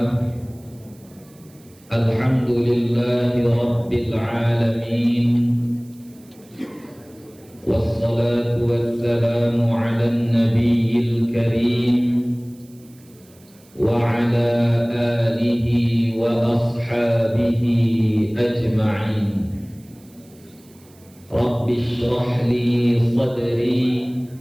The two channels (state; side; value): noise; right; hiss, 28 dB below the sound